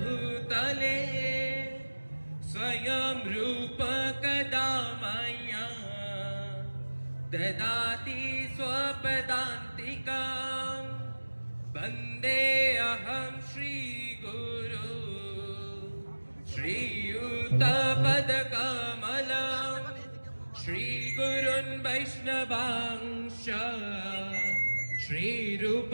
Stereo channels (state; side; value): inverted; both; correlation -1.00